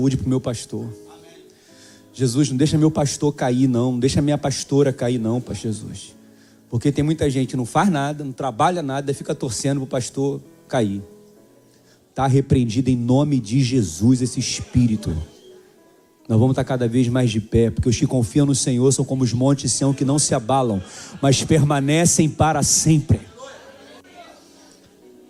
para o meu pastor. Jesus, não deixa meu pastor cair não, não deixa minha pastora cair não, pastor Jesus. Porque tem muita gente que não faz nada, não trabalha nada, fica torcendo para o pastor cair. Está repreendido em nome de Jesus esse espírito. Nós vamos estar cada vez mais de pé, porque os que confiam no Senhor são como os montes de Sião que não se abalam, mas permanecem para sempre.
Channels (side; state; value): both; identical; correlation 1.00